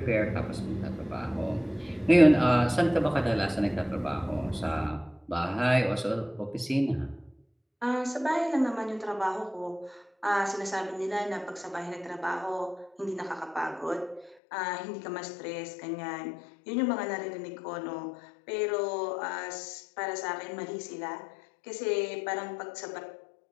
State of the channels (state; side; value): drops out; right; at 14.4 s